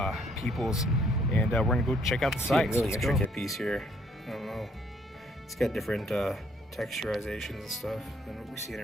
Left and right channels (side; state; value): both; normal; correlation 0.66